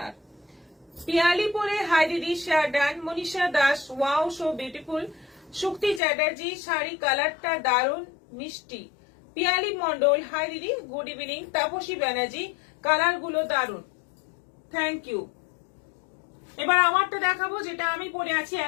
পিয়ালি পরে হাই দিদি, share done. Manisha Das, wow so beautiful. Shukti Chatterjee, sari কালারটা দারুণ মিষ্টি। পিয়ালি মন্ডল, হাই দিদি, good evening. Tapasi Banerjee, colour গুলো দারুণ, থ্যাংক ইউ। এবার আমারটা দেখাবো, যেটা আমি পরে আছি,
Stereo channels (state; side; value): drops out; right; at 6.0 s